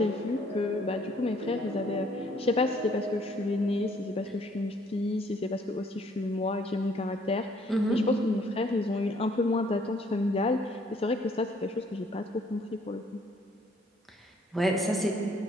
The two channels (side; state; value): both; normal; correlation 0.63